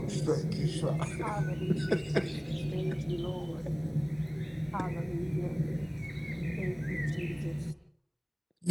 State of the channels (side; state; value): both; identical; correlation 1.00